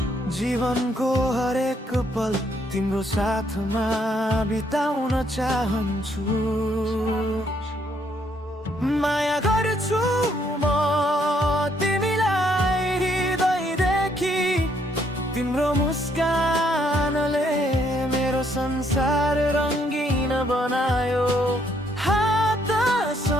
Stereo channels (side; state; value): both; normal; correlation 0.70